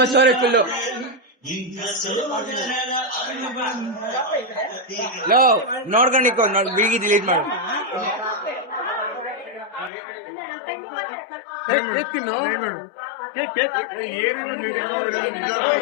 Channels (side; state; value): right; drops out; at 9.9 s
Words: ಸ್ಟೋರಿ ಫುಲ್ಲು ನೋಡ್ಕೊಂಡಿಕೋ ಬಿಗಿ ಡಿಲೀಟ್ ಮಾಡು.